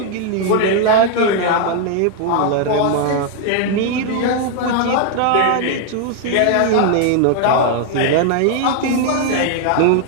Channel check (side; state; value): both; different; correlation 0.00